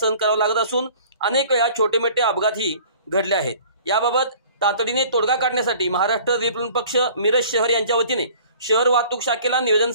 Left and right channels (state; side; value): inverted; both; correlation -0.49